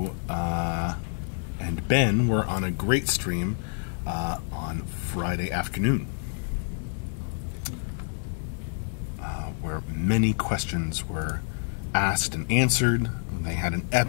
and Ben were on a great stream on Friday afternoon, where many questions were asked and answered. They had an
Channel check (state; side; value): silent; right; digital silence